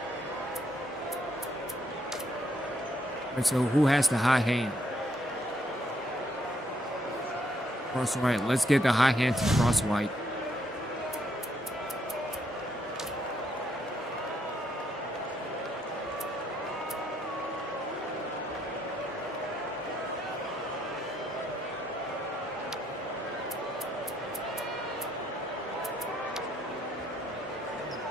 And so who has the high hand? Crosswhite. Let's get the high hand to Crosswhite.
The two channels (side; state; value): both; normal; correlation 0.73